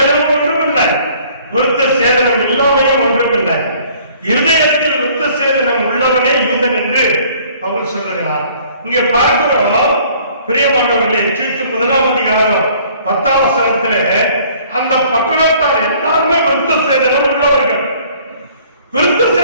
ஒன்றுமில்லை, விருத்த சேதனம் இல்லாமையும் ஒன்றுமில்லை. இருதயத்தில் விருத்த சேதனம் உள்ளவனே யூதன் என்று பவுல் சொல்லுகிறார். இங்கே பார்க்கிறோம் பிரியமானவர்களே, தீத்து 1ஆம் அதிகாரம் 10ஆம் வசனத்திலே அந்த பட்டணத்தார் எல்லாருமே விருத்த சேதனம் உள்ளவர்கள். விருத்த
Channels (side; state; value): both; inverted; correlation -0.57